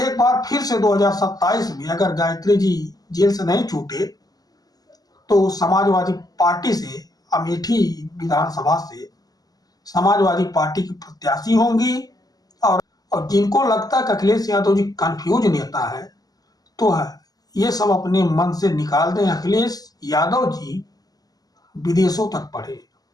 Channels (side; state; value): right; late; 0.18 ms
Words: बार फिर से 2027 में अगर गायत्री जी जेल से नहीं छूटे तो समाजवादी पार्टी से, अमेठी विधानसभा से समाजवादी पार्टी की प्रत्याशी होंगी। और जिनको लगता है कि अखिलेश यादव जी कंफ्यूज नेता है, तो ये सब अपने मन से निकाल दें। अखिलेश यादव जी विदेशों तक पढ़े।